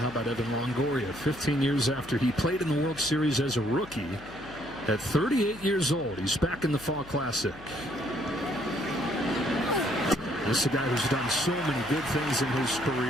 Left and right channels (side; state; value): left; noise; hum, 19 dB below the sound